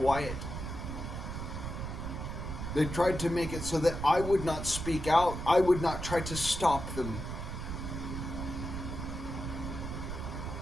They tried to make it so that I would not speak out. I would not try to stop them.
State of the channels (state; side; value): noise; right; rumble, 6 dB below the sound